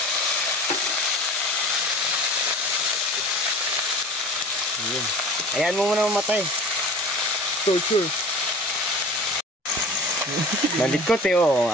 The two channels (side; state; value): both; normal; correlation 0.41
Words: Ayun. Ayan mo muna mamatay. Torture. Malikot eh, oh.